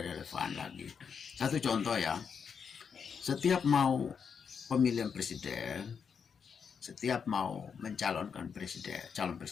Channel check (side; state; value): right; quieter; 6.5 dB